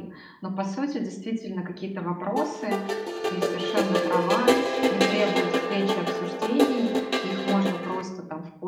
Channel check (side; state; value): both; identical; correlation 1.00